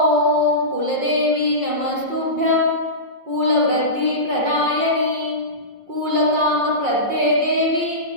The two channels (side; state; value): left; late; 5.6 ms